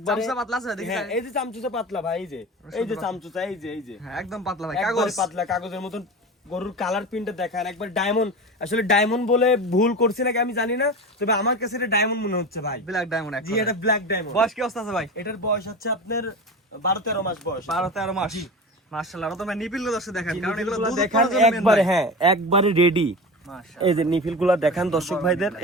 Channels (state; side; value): normal; both; correlation 0.28